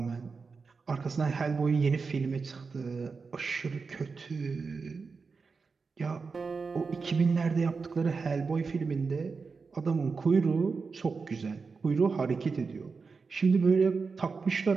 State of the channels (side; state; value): left; quieter; 4.8 dB